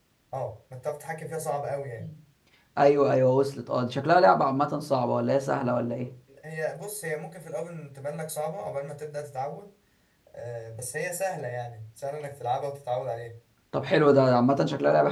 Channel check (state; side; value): identical; both; correlation 1.00